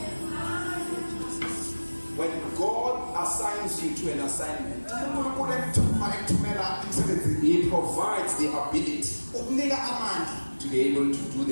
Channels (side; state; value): both; inverted; correlation -1.00